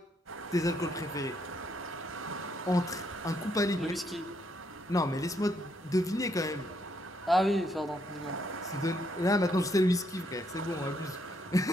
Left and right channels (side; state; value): both; normal; correlation 0.74